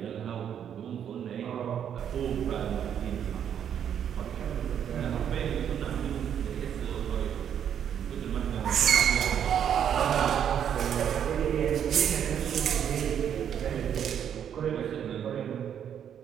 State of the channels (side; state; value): left; quieter; 9.0 dB